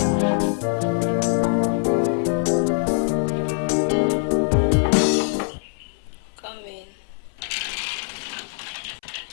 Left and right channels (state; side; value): silent; right; 63 dB below the other